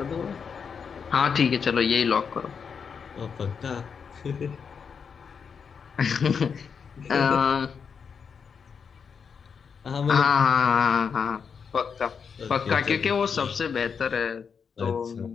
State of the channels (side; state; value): right; quieter; 6.3 dB